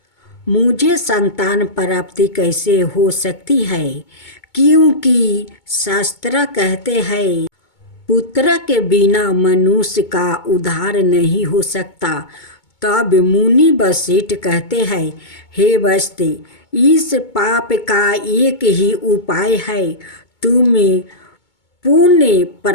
मुझे संतान प्राप्ति कैसे हो सकती है? क्योंकि शास्त्र कहते हैं, पुत्र के बिना मनुष्य का उद्धार नहीं हो सकता। तब मुनि वशिष्ठ कहते हैं, हे वैश्य, इस पाप का एक ही उपाय है। तुम पुण्य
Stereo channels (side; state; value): right; late; 2.2 ms